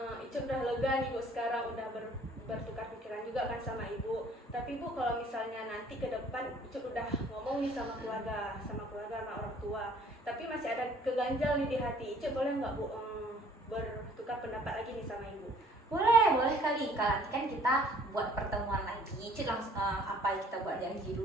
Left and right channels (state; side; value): normal; both; correlation 0.56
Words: Icu udah lega nih Bu, sekarang udah bertukar pikiran juga kan sama Ibu. Tapi Bu, kalau misalnya nanti ke depan Icu udah ngomong nih sama keluarga sama orang tua, tapi masih ada keganjal nih di hati Icu, boleh nggak Bu bertukar pendapat lagi nih sama Ibu? Boleh kali. Kalau nanti kan kita buat pertemuan lagi, Icu langsung apa kita buat janji